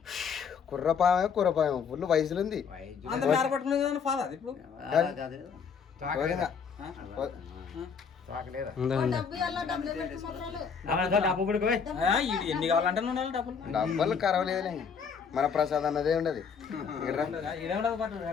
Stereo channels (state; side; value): quieter; right; 6.3 dB